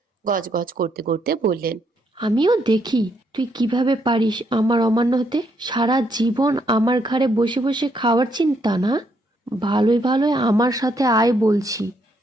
গজগজ করতে করতে বললেন, আমিও দেখি তুই কিভাবে পারিস আমার অমান্য হতে। সারা জীবন আমার ঘাড়ে বসে বসে খাওয়ার চিন্তা না? ভালোই ভালোই আমার সাথে আয় বলছি।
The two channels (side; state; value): both; normal; correlation 0.74